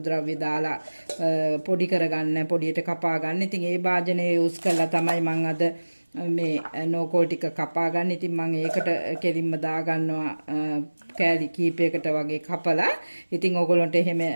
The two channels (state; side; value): inverted; both; correlation -1.00